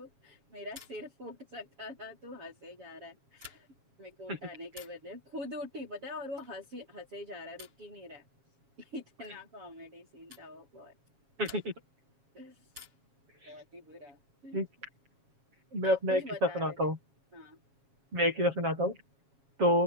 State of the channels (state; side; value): late; left; 7.3 ms